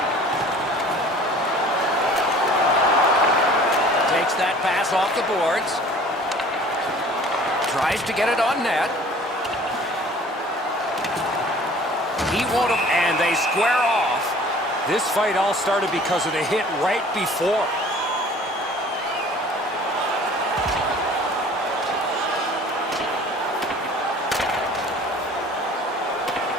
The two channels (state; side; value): normal; both; correlation 0.49